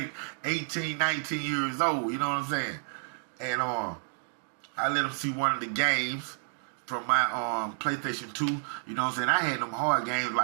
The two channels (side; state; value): left; silent; 58 dB below the other